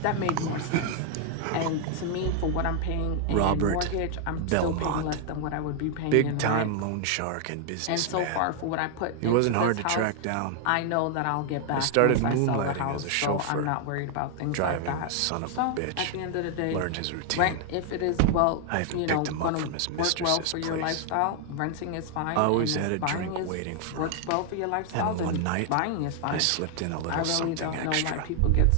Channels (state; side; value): different; both; correlation 0.00